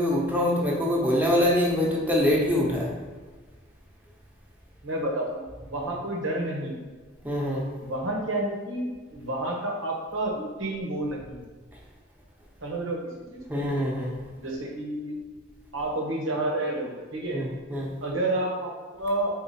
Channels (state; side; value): normal; both; correlation 0.33